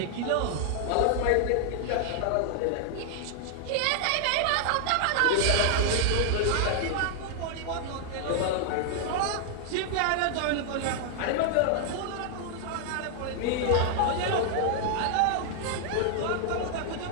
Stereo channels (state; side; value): different; both; correlation 0.00